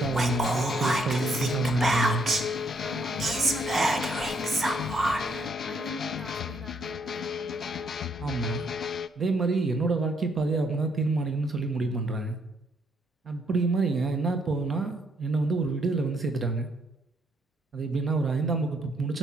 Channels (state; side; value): normal; both; correlation 0.71